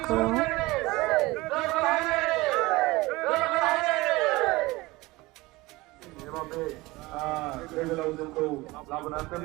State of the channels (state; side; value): quieter; left; 21.1 dB